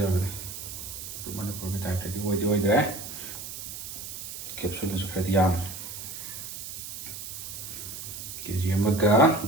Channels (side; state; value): right; noise; hiss, 9 dB below the sound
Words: 머니푸르기 타입들이 오이드래. 캡슐에서 그래도 양. KG 엄마가